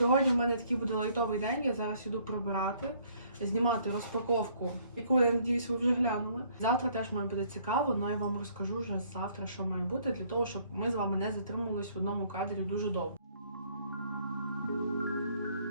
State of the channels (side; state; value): both; inverted; correlation -0.63